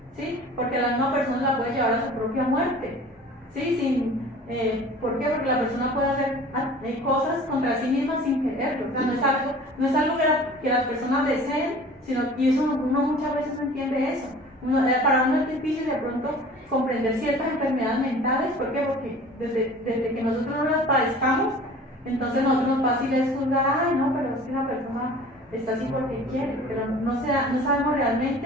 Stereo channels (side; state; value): both; normal; correlation 0.44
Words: ¿sí? Porque la misma persona la puede llevar a su propia muerte, ¿sí? ¿Por qué? Porque la persona puede hacer cosas contra sí misma sin quererlo. O sea, no es algo que las personas deseen, y eso uno muchas veces no entiende eso. Para uno es difícil de pronto comprender ciertas enfermedades mentales. ¿Por qué? Porque desde que nosotros no las padezcamos, entonces nosotros nos fácil es juzgar, ay no, pero es que la persona está así porque quiere, pero no sabemos